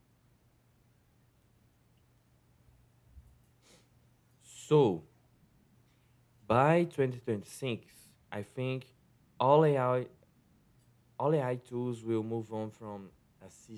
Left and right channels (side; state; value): both; identical; correlation 1.00